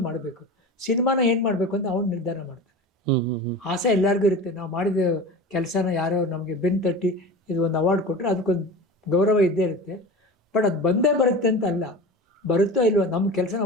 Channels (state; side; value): normal; both; correlation 0.33